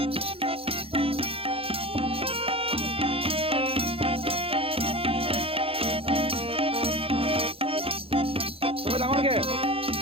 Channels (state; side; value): late; left; 0.27 ms